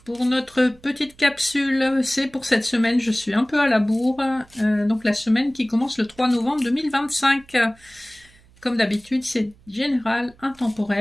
pour notre petite capsule. C'est pour cette semaine, je suis un peu à la bourre, donc la semaine qui commence le 3 novembre 2025. Comme d'habitude, c'est général,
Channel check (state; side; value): noise; right; hum, 28 dB below the sound